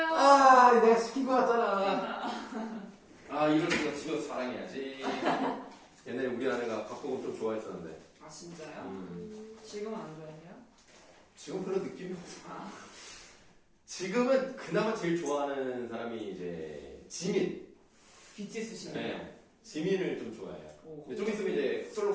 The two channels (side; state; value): both; identical; correlation 1.00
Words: 아, 내가 시킨 거 같잖아. 아, 이럴 수가 집에서 자랑해야지. 옛날에 우리 아내가 박보검 좀 좋아했었는데. 아 진짜요? 지금은 안 좋아해요? 지금 별로 느낌이 없어. 아. 지금은 그나마 제일 좋아하는 사람이 이제 지민. BTS 씨. 네, 지민을 좀 좋아해요. 오. 좀 있으면 이제